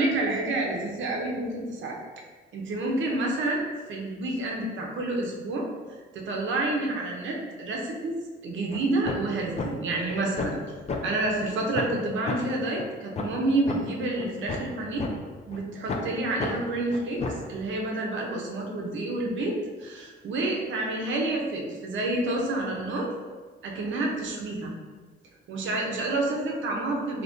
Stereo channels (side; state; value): both; normal; correlation 0.40